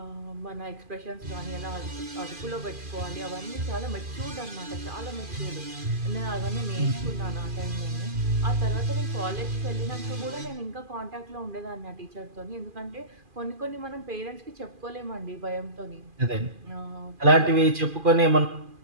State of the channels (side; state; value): left; late; 2.4 ms